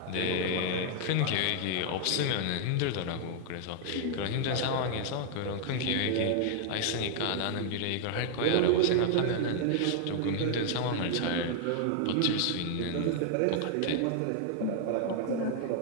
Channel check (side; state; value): both; different; correlation 0.00